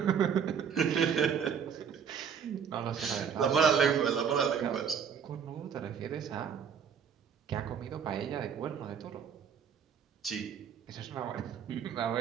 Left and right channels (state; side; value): quieter; left; 7.3 dB